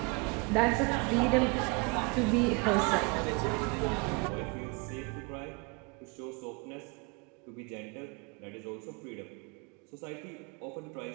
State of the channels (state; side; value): quieter; left; 30.4 dB